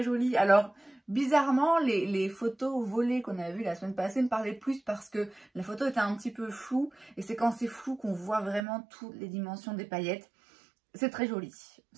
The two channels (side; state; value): left; drops out; at 8.6 s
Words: joli. Alors, bizarrement, les photos volées qu'on a vues la semaine passée me parlaient plus parce que la photo était un petit peu floue. Et c'est quand c'est flou qu'on voit vraiment toutes les dimensions des paillettes. C'est très joli.